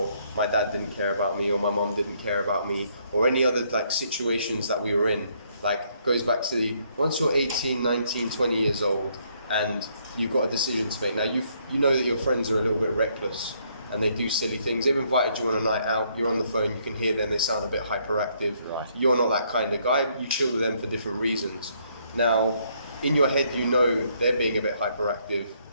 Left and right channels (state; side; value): inverted; both; correlation -0.70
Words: my dad didn't care about me, or my mom didn't care about me, or any other like situations that we were in. Like, goes back to once you're 18, 19, 20 years old and you've got a decision to make. Now, you know that your friends are a little bit reckless and they do silly things. They've invited you on a night out, you're on the phone, you can hear them, they sound a bit hyperactive. Right. You're not that kind of guy, you chill with them for different reasons. Now, in your head, you know they're being a bit hyperactive,